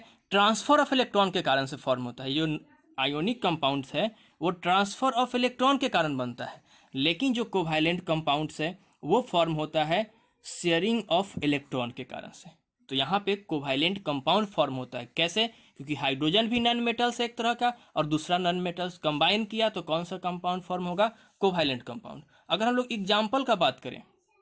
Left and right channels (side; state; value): both; identical; correlation 1.00